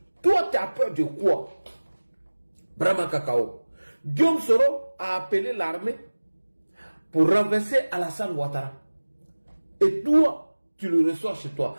Toi tu as peur de quoi? Brahma Kakao. Guillaume Soro a appelé l'armée pour renverser Alassane Ouattara. Et toi, tu le reçois chez toi.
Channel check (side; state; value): both; inverted; correlation -1.00